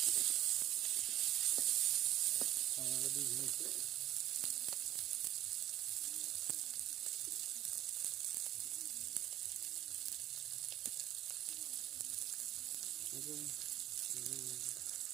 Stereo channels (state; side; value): quieter; left; 13.1 dB